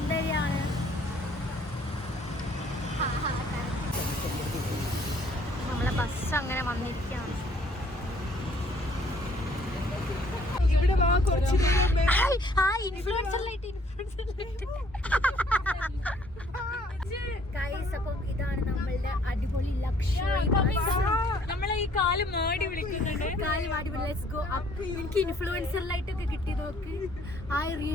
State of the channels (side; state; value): both; normal; correlation 0.61